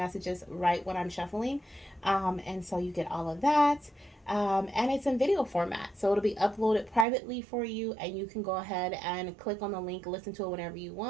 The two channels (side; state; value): left; drops out; at 7.1 s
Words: right when I'm shuffling. And so you get all of that. And it's in video format. So it'll be uploaded privately for you, and you can go ahead and click on the link, listen to it whenever you